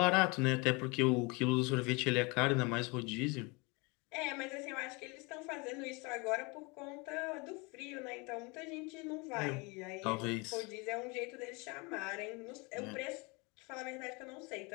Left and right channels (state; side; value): quieter; right; 28.3 dB